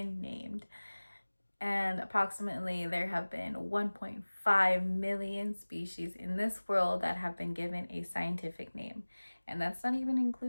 named. And approximately there have been 1.5 million species in this world that have been given a scientific name. And that's not even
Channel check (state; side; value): inverted; both; correlation -1.00